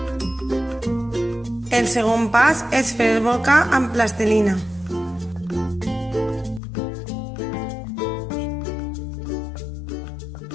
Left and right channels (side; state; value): right; drops out; at 6.6 s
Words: El segon pas és fer el volcà amb plastilina.